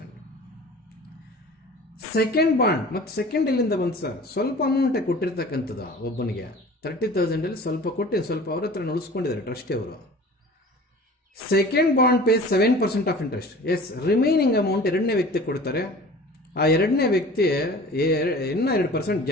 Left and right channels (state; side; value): normal; both; correlation 0.42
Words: ಸೆಕೆಂಡ್ ಬಾಂಡ್, ಮತ್ತು ಸೆಕೆಂಡ್ ಎಲ್ಲಿಂದ ಬಂತು ಸರ್? ಸ್ವಲ್ಪ ಅಮೌಂಟೇ ಕೊಟ್ಟಿರ್ತಕ್ಕಂಥದ್ದು ಒಬ್ಬನಿಗೆ 30,000 ಸ್ವಲ್ಪ ಕೊಟ್ಟು ಸ್ವಲ್ಪ ಅವ್ರ ಹತ್ರ ಉಳಿಸ್ಕೊಂಡಿದ್ದಾರೆ ಟ್ರಸ್ಟಿ ಅವರು. Second bond pay 7% of interest. Yes, remaining amount ಎರಡನೇ ವ್ಯಕ್ತಿ ಕೊಡ್ತಾರೆ. ಆ ಎರಡನೇ ವ್ಯಕ್ತಿ ಇನ್ನೂ 2%